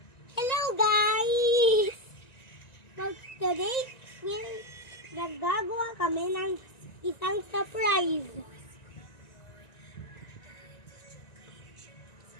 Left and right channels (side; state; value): right; late; 1.9 ms